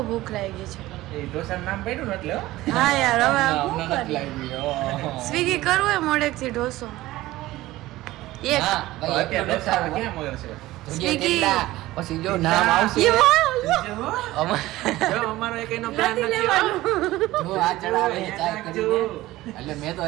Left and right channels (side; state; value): left; quieter; 17.1 dB